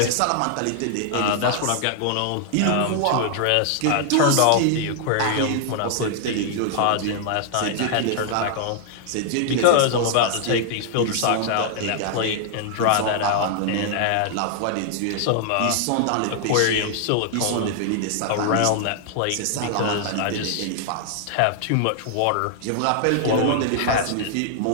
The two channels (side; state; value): both; different; correlation -0.01